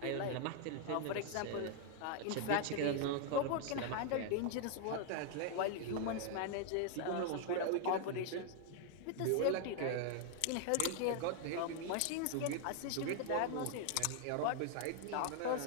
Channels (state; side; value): different; both; correlation 0.00